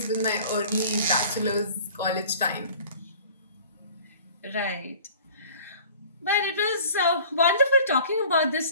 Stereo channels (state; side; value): inverted; both; correlation -0.47